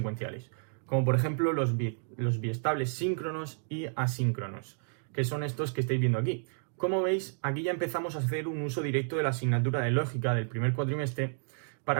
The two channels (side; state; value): left; silent; 57 dB below the other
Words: como por ejemplo los biestables síncronos y asíncronos, que son estos que estáis viendo aquí. Como veis, aquí ya empezamos a hacer un uso directo de la asignatura de lógica del primer cuatrimestre